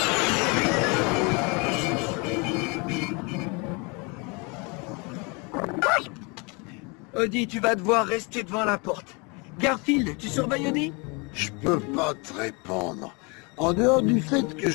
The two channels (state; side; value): quieter; right; 30.2 dB